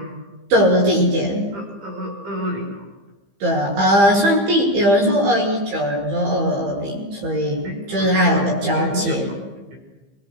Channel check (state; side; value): late; left; 15 ms